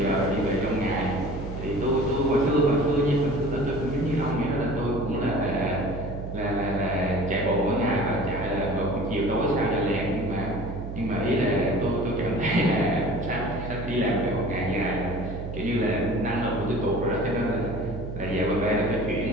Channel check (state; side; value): noise; right; hum, 7 dB below the sound